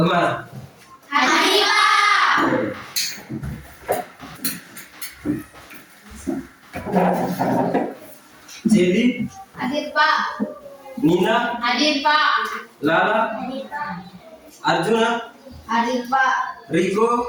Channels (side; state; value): both; identical; correlation 1.00